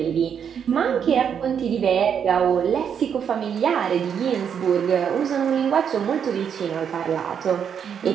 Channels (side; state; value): left; quieter; 7.8 dB